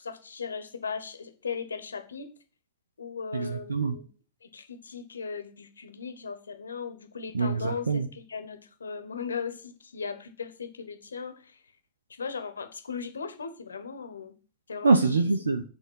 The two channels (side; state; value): both; inverted; correlation -0.75